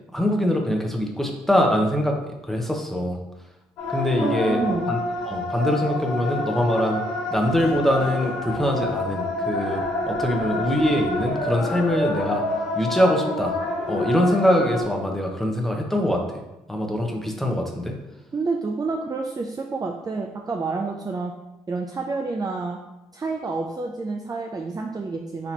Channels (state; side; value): normal; both; correlation 0.74